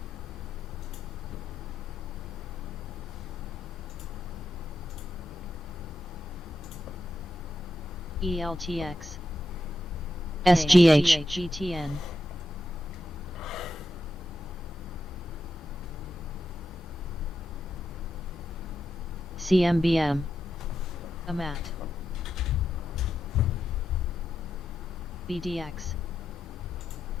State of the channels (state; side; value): normal; both; correlation 0.86